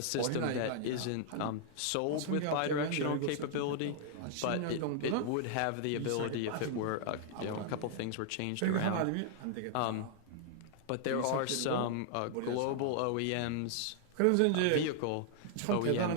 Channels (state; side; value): different; both; correlation -0.01